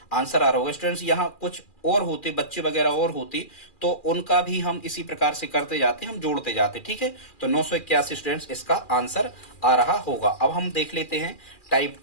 आंसर आ रहा होगा। स्टूडेंट्स यहाँ कुछ और होते, बच्चे वगैरह और होते तो उनका भी हम इसी प्रकार से करते जाते, हम जोड़ते जाते। ठीक है, तो 981 स्टूडेंट्स इसका आंसर आ रहा होगा। अब हम देख लेते हैं टाइप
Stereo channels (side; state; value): right; late; 2.4 ms